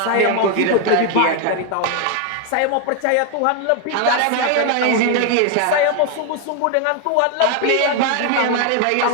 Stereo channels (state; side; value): different; both; correlation 0.01